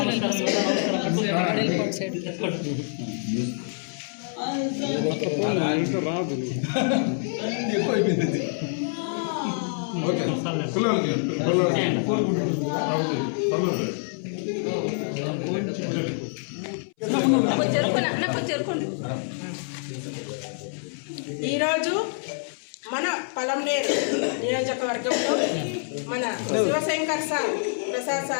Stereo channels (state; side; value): silent; right; 61 dB below the other